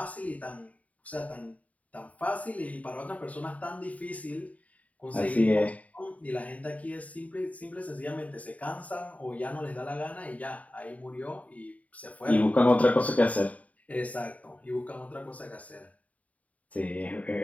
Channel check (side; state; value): right; late; 0.070 ms